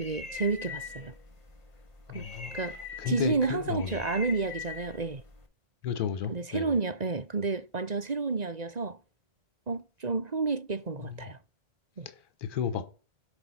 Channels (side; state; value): left; late; 1.9 ms